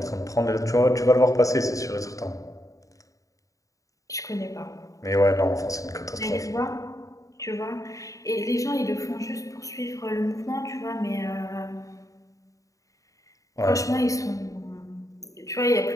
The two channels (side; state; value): right; late; 0.16 ms